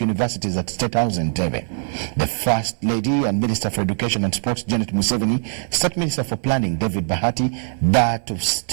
at State House in Entebbe. The First Lady and Minister for Education and Sports, Janet Museveni, State Minister for Planning, David Bahati, that of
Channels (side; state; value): left; silent; 65 dB below the other